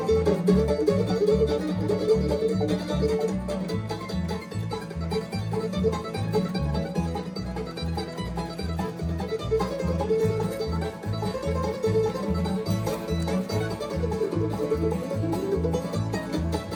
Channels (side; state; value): both; identical; correlation 1.00